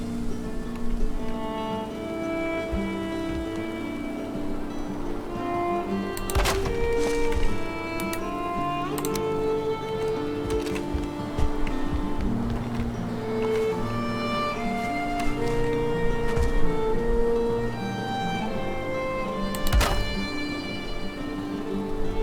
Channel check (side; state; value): both; identical; correlation 1.00